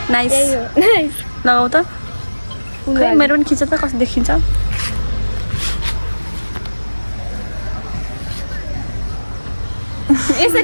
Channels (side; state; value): both; inverted; correlation -1.00